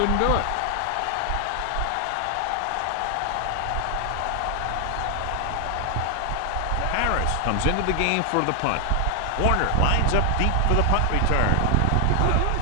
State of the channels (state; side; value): different; both; correlation 0.00